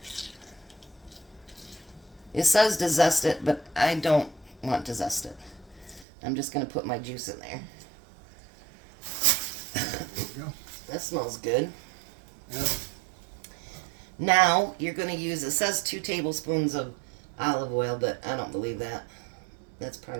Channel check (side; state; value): left; drops out; at 6.1 s